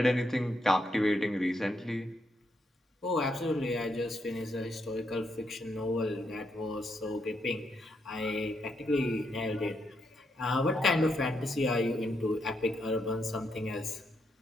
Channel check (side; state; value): both; normal; correlation 0.79